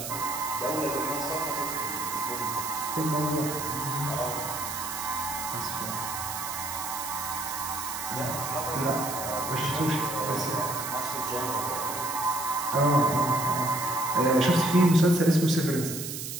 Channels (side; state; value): right; noise; hiss, 6 dB below the sound